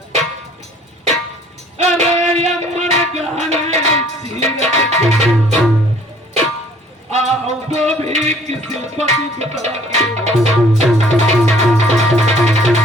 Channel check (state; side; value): normal; both; correlation 0.56